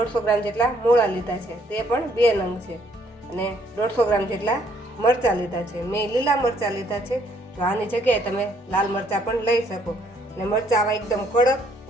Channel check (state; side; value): normal; both; correlation 0.66